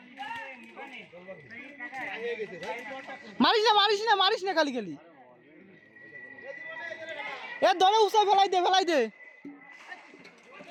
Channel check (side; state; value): both; identical; correlation 1.00